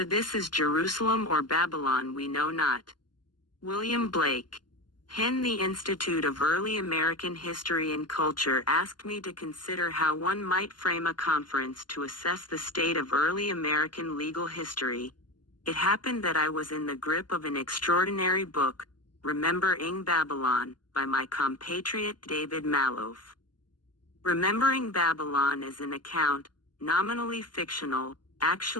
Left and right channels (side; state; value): right; late; 0.71 ms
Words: this is Jerusalem or Babylon we know not. William Blake. Hen. The Institute of Early American History and Culture asked me to consider how one might frame a conference to assess the state of early American legal history. It happened that I was in the grip of an extraordinary book, Remembering Babylon, by my compatriot David Malouf. Remembering Babylon is an account, nominally fictional,